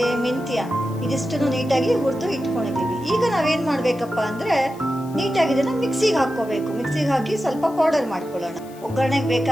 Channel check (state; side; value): noise; left; hiss, 24 dB below the sound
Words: ಮೆಂತ್ಯ ಇದಿಷ್ಟನ್ನು ನೀಟಾಗಿ ಹುರಿದು ಇಟ್ಕೊಂಡಿದ್ದೀವಿ. ಈಗ ನಾವೇನು ಮಾಡಬೇಕಪ್ಪ ಅಂದರೆ ನೀಟಾಗಿ ಇದನ್ನು ಮಿಕ್ಸಿಗೆ ಹಾಕ್ಕೋಬೇಕು. ಮಿಕ್ಸಿಗೆ ಹಾಕಿ ಸ್ವಲ್ಪ ಪೌಡರ್ ಮಾಡ್ಕೊಳ್ಳೋಣ. ಒಗ್ಗರಣೆಗೆ